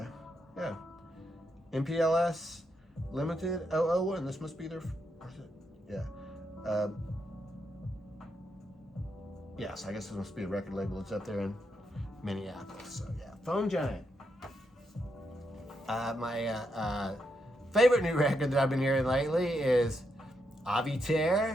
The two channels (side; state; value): both; normal; correlation 0.81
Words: yeah. MPLS Limited 001. This must be their. Yeah. Yes, I guess this must be a record label. It's up there in Minneapolis. So, yeah. Foam Giant. My favorite new record that I've been hearing lately is Avey